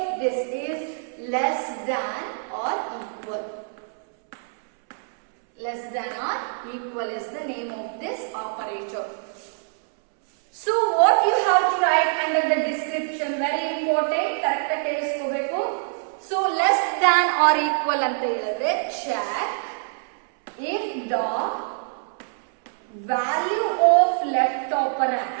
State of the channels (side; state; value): left; silent; 62 dB below the other